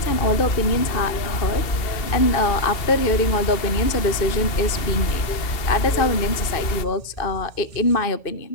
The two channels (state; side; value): late; right; 2.7 ms